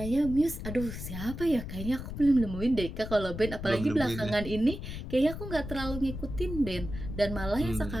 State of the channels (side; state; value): left; noise; rumble, 8 dB below the sound